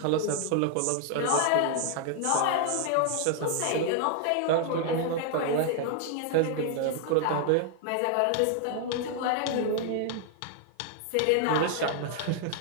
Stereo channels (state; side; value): different; both; correlation 0.00